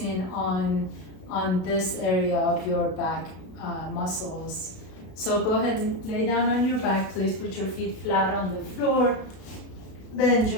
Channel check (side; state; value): right; late; 32 ms